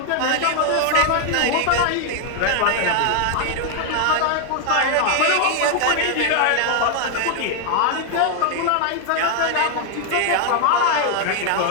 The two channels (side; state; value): both; different; correlation 0.00